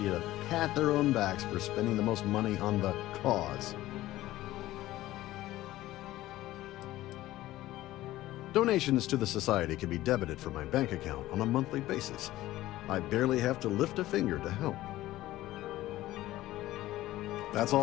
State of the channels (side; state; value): right; quieter; 15.8 dB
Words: to pat their own backs for spending the most money on the cause. Donations to the Society can be debited from my bank account on a monthly basis. I barely have to lift a finger to help. That's